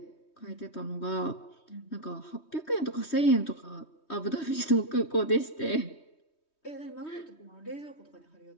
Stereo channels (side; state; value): right; late; 3.2 ms